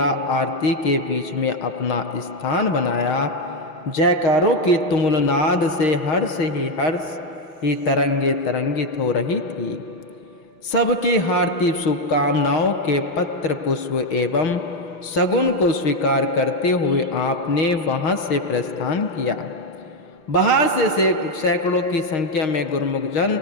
आरती के बीच में अपना स्थान बनाया। जयकारों की तुमुल नाद से हर्ष ही तरंगित हो रही थी। सबकी हार्दिक शुभकामनाओं के पत्र, पुष्प एवं शगुन को स्वीकार करते हुए आपने वहां से प्रस्थान किया। बाहर से सैकड़ों की संख्या में गुरुमुख जन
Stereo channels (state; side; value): late; right; 5.9 ms